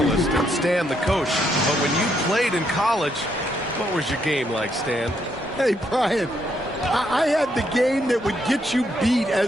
and Stan the coach. But when you played in college, what was your game like, Stan? Hey, Brian, I had the game that would get you beat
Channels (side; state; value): both; normal; correlation 0.75